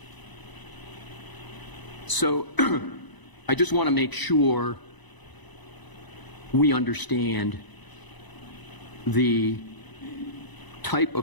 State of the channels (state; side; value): late; right; 1.0 ms